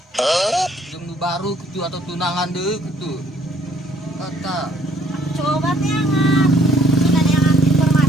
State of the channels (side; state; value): both; normal; correlation 0.63